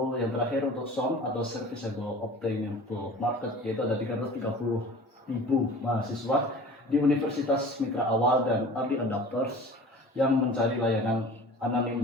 yang terakhir untuk SOM atau Serviceable Obtainable Market, yaitu ada 330.000 mahasiswa di Universitas Mitra Awal dan early adopters yang mencari layanan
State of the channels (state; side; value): normal; both; correlation 0.41